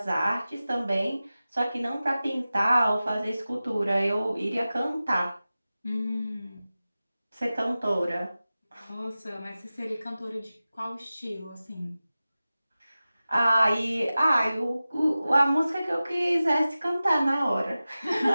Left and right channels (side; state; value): both; inverted; correlation -0.95